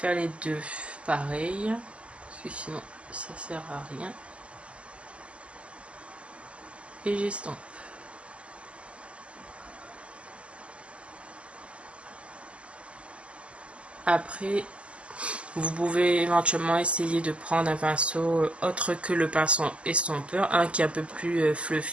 les deux pareil, parce que sinon ça sert à rien. Et j'estompe. Après, vous pouvez éventuellement essayer de prendre un pinceau autre que le pinceau estompeur, un qui est un peu plus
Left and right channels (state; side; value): late; left; 0.057 ms